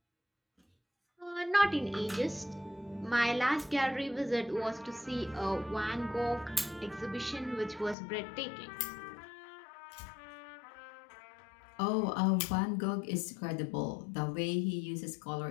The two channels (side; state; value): right; drops out; at 8.0 s